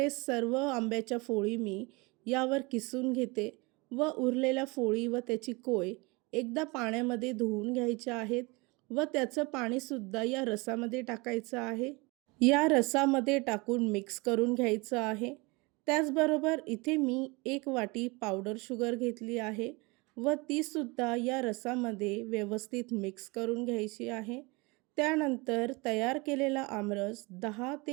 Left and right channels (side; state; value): left; quieter; 26.3 dB